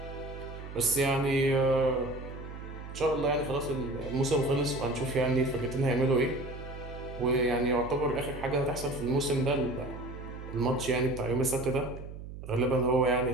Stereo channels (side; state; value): right; noise; hum, 11 dB below the sound